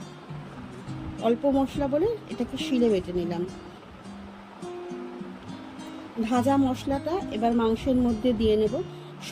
অল্প মশলা বলে এটাকে শিলে বেটে নিলাম। ভাজা মশলাটা এবার মাংসের মধ্যে দিয়ে নেব।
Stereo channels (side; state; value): both; identical; correlation 1.00